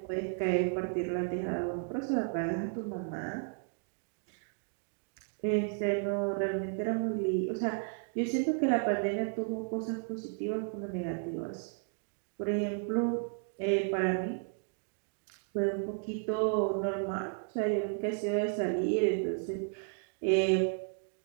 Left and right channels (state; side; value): silent; left; 55 dB below the other